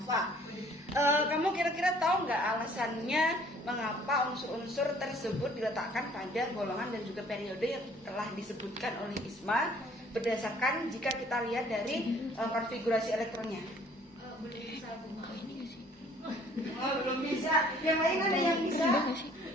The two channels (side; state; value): both; normal; correlation 0.57